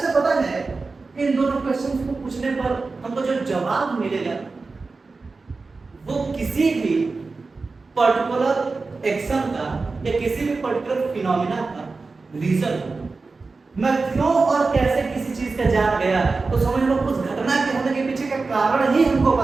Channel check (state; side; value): quieter; left; 4.0 dB